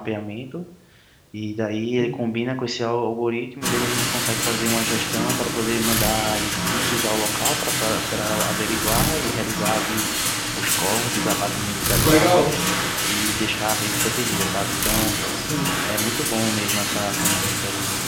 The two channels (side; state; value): both; identical; correlation 1.00